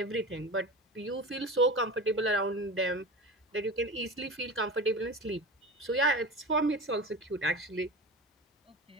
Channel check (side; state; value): both; normal; correlation 0.30